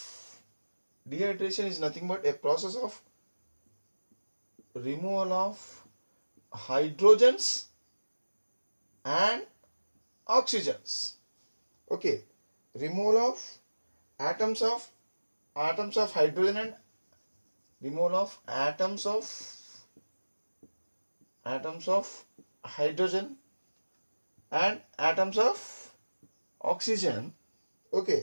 dehydration is nothing but a process of removal of hydrogens and oxygens. Okay, removal of atoms of hydrogen and removal of atoms of hydrogen and atoms of oxygen.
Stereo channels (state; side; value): inverted; both; correlation -1.00